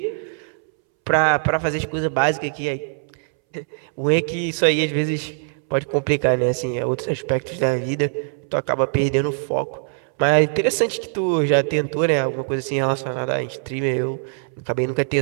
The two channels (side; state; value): left; silent; 64 dB below the other